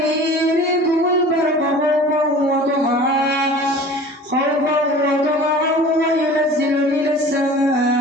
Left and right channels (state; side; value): normal; both; correlation 0.42